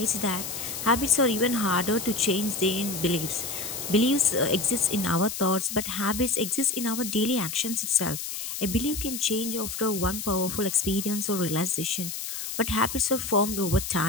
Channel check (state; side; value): noise; left; hiss, 6 dB below the sound